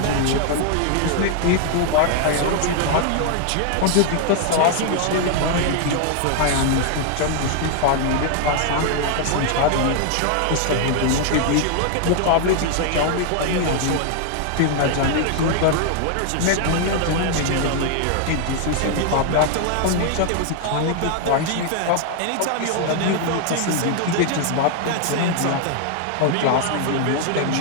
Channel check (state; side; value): different; both; correlation 0.00